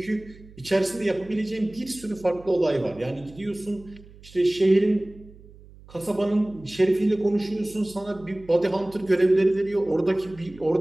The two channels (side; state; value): right; noise; hum, 22 dB below the sound